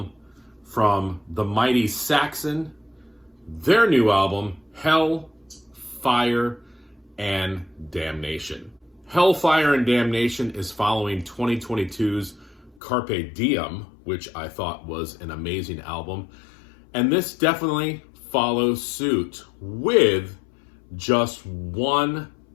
from the mighty Saxon, their new album, Hell, Fire, and Damnation. Hellfire and Damnation is following 2022's Carpe Diem, which I thought was an amazing album. And this definitely follows suit with just one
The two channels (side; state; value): right; drops out; at 12.8 s